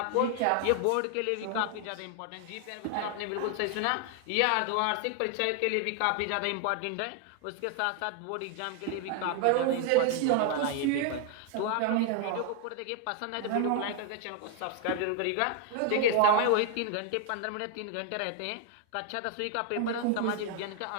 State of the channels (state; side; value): different; both; correlation 0.00